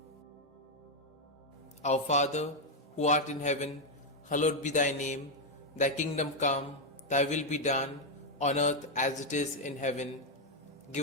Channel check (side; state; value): both; normal; correlation 0.02